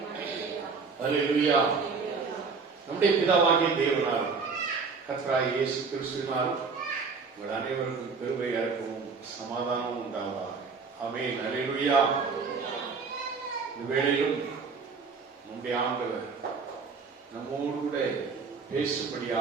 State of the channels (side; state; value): left; quieter; 4.9 dB